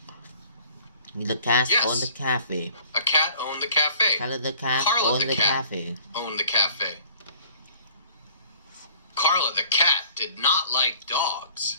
The cat Yes. owned the cafe. A cat owned the cafe. Carla the cat Carla owned the the cat cafe. owned the cafe. Carla the cat did not like dogs.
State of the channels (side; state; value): both; inverted; correlation -0.52